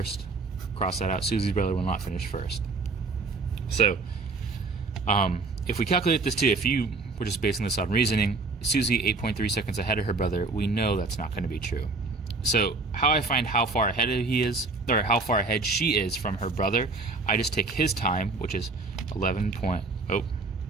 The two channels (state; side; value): quieter; left; 3.7 dB